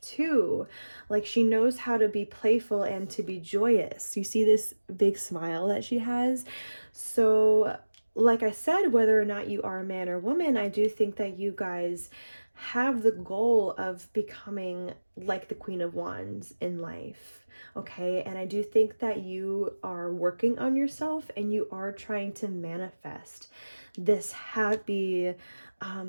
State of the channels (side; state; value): both; inverted; correlation -1.00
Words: Like she knows how to be playful and to be joyous. You see this big smile that she has. So like I said, whether or not you are a man or woman, I do think that you guys have the goal of becoming like the Queen of Wands in life. Okay, and I do think that you are working on yourself and you are trying to manifest this happy,